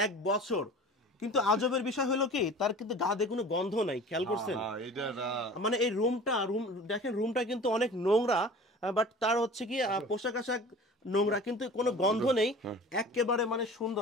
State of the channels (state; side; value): normal; both; correlation 0.41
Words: 1 বছর। কিন্তু আজবের বিষয় হলো কি, তার কিন্তু গা দিয়ে কোনো গন্ধ নাই। খেয়াল করছেন? হ্যাঁ, এটা মানে এই দেখেন, রুমটা কিন্তু অনেক নোংরা, বাট তার হচ্ছে কি পোশাক আশাক নোংরা, কিন্তু কোনো গন্ধ নেই। একেবারে মানে